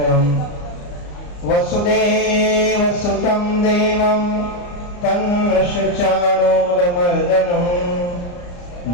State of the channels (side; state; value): right; late; 34 ms